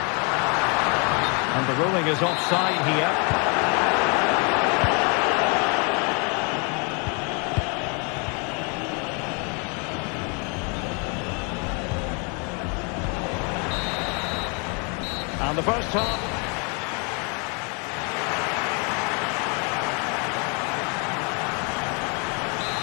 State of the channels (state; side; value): quieter; right; 35.0 dB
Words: And the ruling is offside here. And the first half.